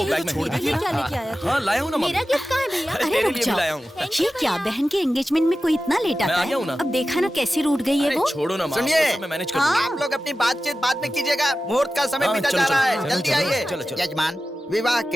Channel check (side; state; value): both; normal; correlation 0.94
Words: बैग में छोड़ दीजिए, क्या लेके आया था? हाँ लाया हूँ ना माँ। मेरा गिफ्ट कहाँ है भैया? अरे अरे तेरे रुक लिए भी जाओ। लाया हूँ। ये क्या, बहन के एंगेजमेंट में कोई इतना लेट मैं आता आ गया हूँ ना। है? अब देखा ना कैसी रूठ गई है अरे वो। छोड़ो ना माँ, सुनिए। वो सब मैं मैनेज कर हाँ। लूंगा। आप लोग अपनी बातचीत बाद में कीजिएगा, मुहूर्त का समय हाँ, बीता चलो, जा रहा चलो, है। चलो, जल्दी चलो, आइए। चलो, चलो। यजमान, विवाह